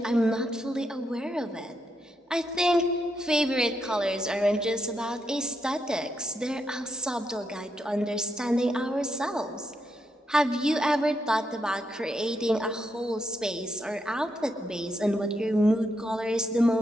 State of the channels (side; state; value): both; normal; correlation 0.81